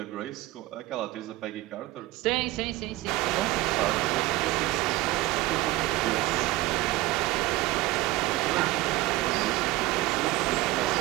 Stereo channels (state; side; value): quieter; left; 18.5 dB